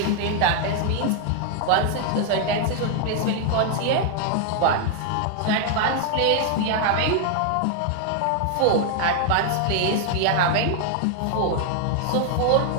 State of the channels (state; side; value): different; both; correlation 0.00